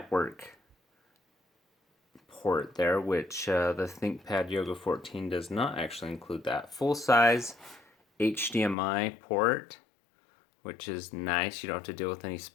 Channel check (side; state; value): right; drops out; at 8.8 s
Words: port there, which the Thinkpad Yoga 14 does not actually include that. Full-size HDMI port, which is nice. You don't have to deal with any